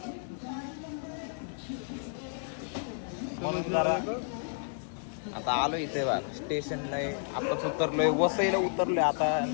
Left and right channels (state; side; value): silent; right; digital silence